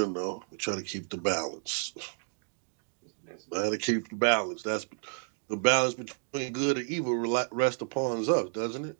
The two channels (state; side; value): silent; left; 57 dB below the other